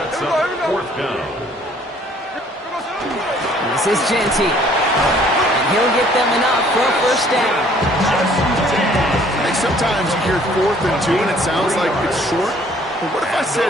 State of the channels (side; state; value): both; normal; correlation 0.59